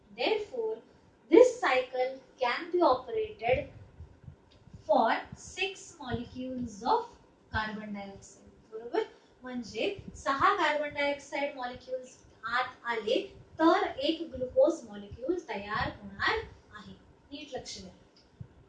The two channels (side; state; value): both; identical; correlation 1.00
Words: Therefore, this cycle can be operated for 6 molecules of carbon dioxide. बरोबर. म्हणजे 6 carbon dioxide molecules आत आले तर एक glucose molecule तयार होणार आहे. नीट लक्ष द्या.